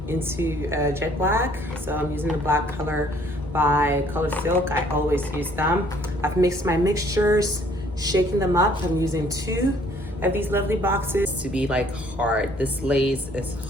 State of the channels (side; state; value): right; noise; hum, 19 dB below the sound